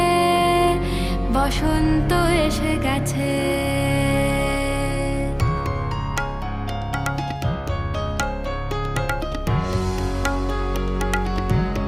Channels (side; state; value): both; identical; correlation 1.00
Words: বসন্ত এসে গেছে।